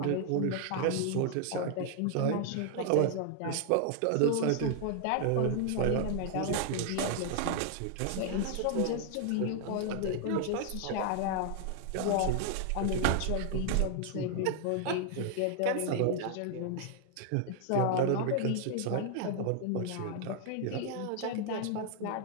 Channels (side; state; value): both; different; correlation 0.00